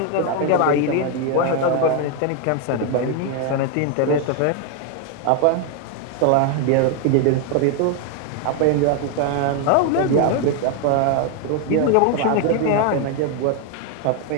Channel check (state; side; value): different; both; correlation 0.01